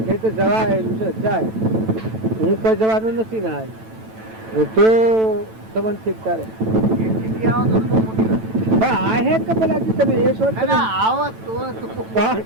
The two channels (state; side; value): late; left; 9.1 ms